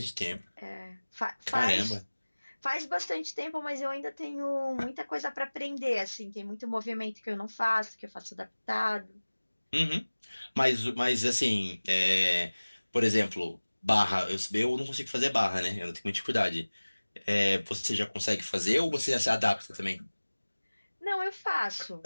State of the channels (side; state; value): both; inverted; correlation -1.00